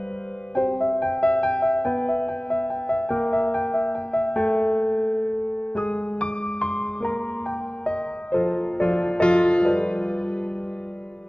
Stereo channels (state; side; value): late; right; 0.050 ms